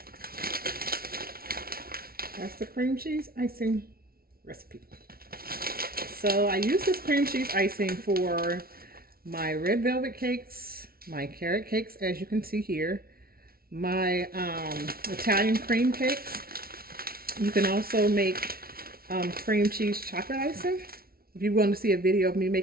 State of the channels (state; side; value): late; left; 0.44 ms